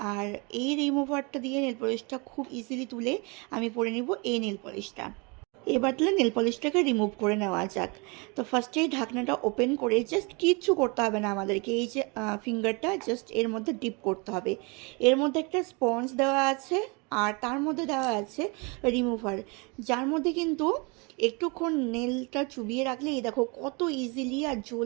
আর এই রিমুভারটা দিয়ে নেল পলিশটা খুব ইজিলি তুলে আমি পরে নিব এই নেল পলিশটা। এবার তাহলে নেল পলিশটাকে রিমুভ করে নেওয়া যাক। তো ফার্স্টেই ঢাকনাটা ওপেন করে জাস্ট কিচ্ছু করতে হবে না আমাদেরকে, এই যে ফিঙ্গারটা জাস্ট এর মধ্যে ডিপ করতে হবে। এর মধ্যে একটা স্পঞ্জ দেওয়া আছে আর তার মধ্যে দেওয়া আছে রিমুভার, যার মধ্যে কিন্তু একটুক্ষণ নেলটা চুবিয়ে রাখলে এই দেখো কত ইজিলি আর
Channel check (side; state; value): left; quieter; 30.3 dB